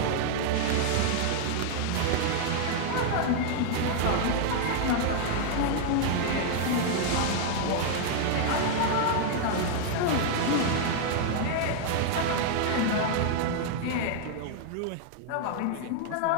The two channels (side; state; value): both; different; correlation 0.00